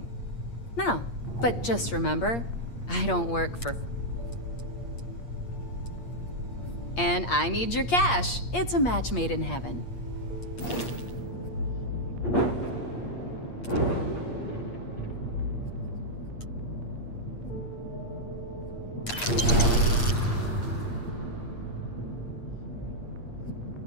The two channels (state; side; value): late; right; 8.5 ms